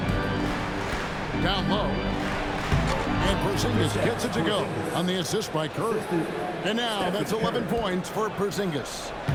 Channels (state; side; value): identical; both; correlation 1.00